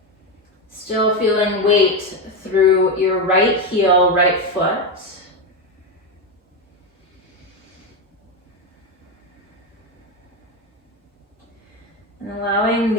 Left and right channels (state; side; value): normal; both; correlation 0.12